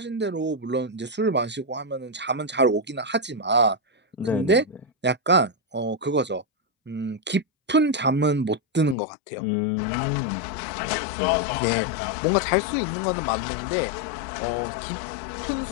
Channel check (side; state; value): right; drops out; at 9.0 s